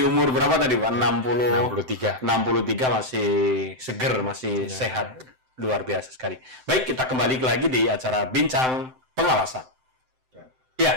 umur berapa tadi Pak? 63. 63 masih seger, masih sehat. Luar biasa sekali. Baik, kita kembali lagi di acara Bincang Pengawasan.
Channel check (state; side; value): late; left; 7.8 ms